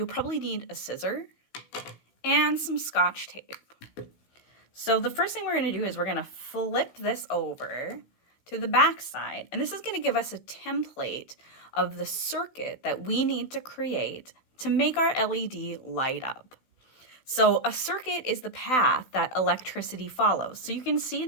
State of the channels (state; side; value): late; right; 16 ms